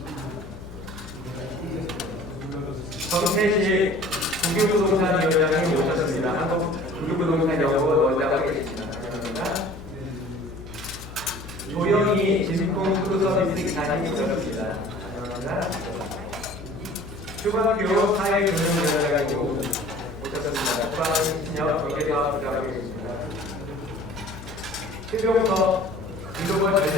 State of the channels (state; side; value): noise; left; hum, 14 dB below the sound